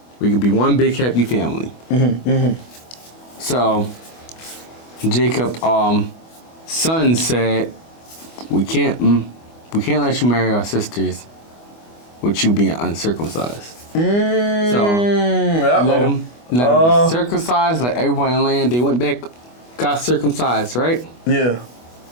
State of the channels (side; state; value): right; late; 25 ms